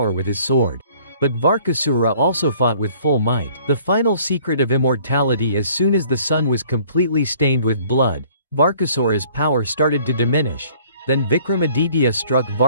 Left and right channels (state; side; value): inverted; both; correlation -0.56